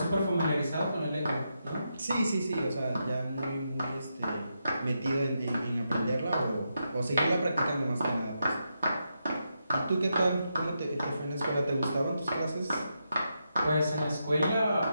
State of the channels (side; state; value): both; inverted; correlation -0.84